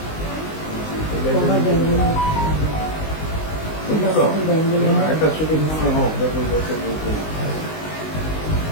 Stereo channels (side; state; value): right; late; 19 ms